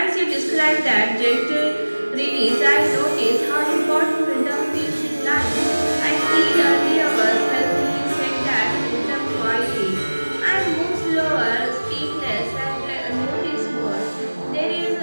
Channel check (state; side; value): inverted; both; correlation -1.00